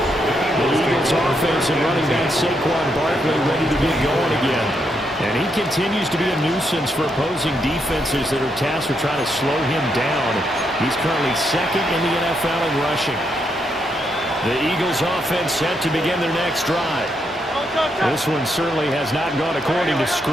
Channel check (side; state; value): both; normal; correlation 0.79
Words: The Eagles offense and running back Saquon Barkley ready to get going again. And he continues to be a nuisance for opposing defenses that are tasked with trying to slow him down. He's currently second in the NFL in rushing. The Eagles offense set to begin their next drive. This one certainly has not gone according to